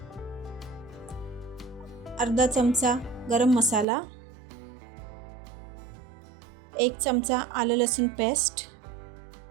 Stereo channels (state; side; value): drops out; left; at 3.9 s